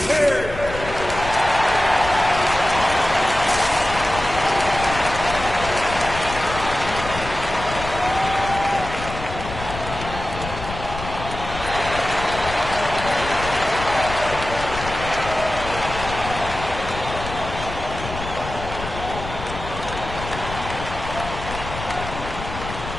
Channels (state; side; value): noise; left; rumble, 9 dB below the sound